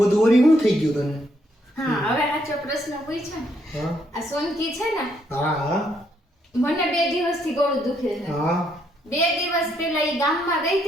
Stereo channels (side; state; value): both; normal; correlation 0.73